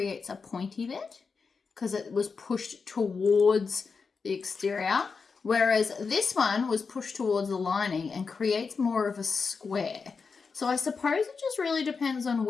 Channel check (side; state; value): right; quieter; 5.1 dB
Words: a pointy bit, because it was pushed towards the exterior, whereas this one was pushed towards the lining and creates more of a square. So I suppose it just really depends on